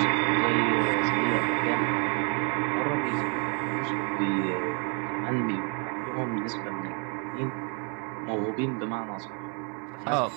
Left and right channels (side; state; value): left; quieter; 36.9 dB